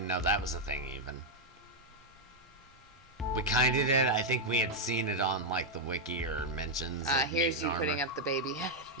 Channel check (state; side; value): normal; both; correlation -0.01